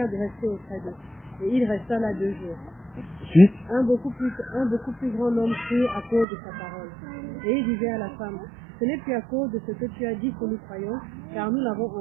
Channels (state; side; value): drops out; left; at 6.2 s